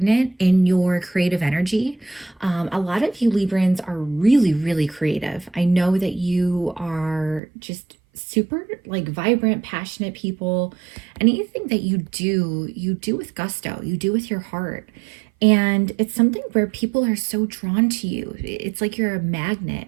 in your creative energy. A lot of you Librans are really, really creative. I know that you are just super like vibrant, passionate people. Anything that you do with gusto, you do with your heart. And it's something where people are so drawn to you. It's like you're a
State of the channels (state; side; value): drops out; left; at 7.4 s